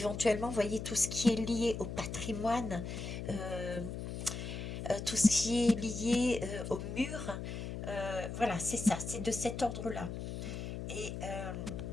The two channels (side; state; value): left; noise; hum, 6 dB below the sound